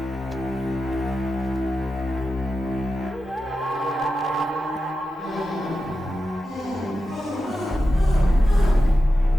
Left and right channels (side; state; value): both; normal; correlation 0.91